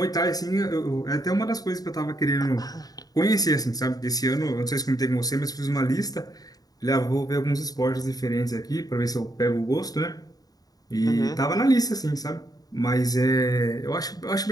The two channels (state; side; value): late; right; 0.18 ms